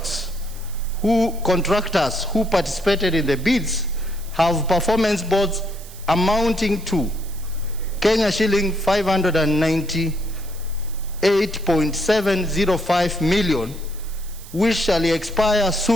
who participated in the bids have performance boards amounting to Kenya shilling 598.705 million, which shall expire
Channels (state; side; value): noise; right; hiss, 19 dB below the sound